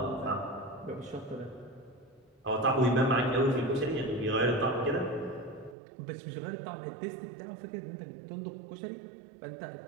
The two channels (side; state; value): left; drops out; at 5.8 s